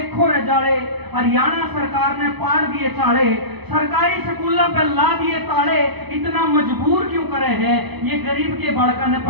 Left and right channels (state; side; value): late; left; 0.99 ms